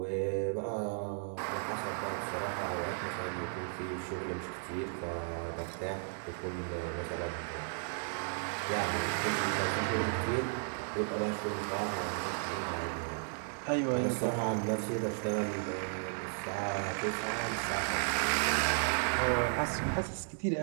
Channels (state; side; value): silent; left; 55 dB below the other